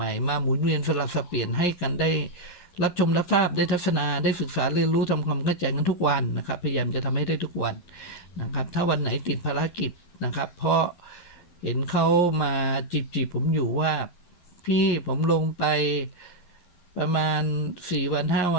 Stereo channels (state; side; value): late; right; 11 ms